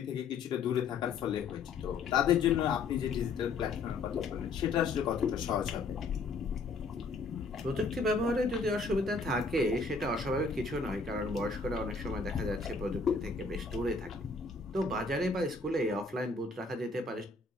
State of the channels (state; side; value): quieter; right; 4.1 dB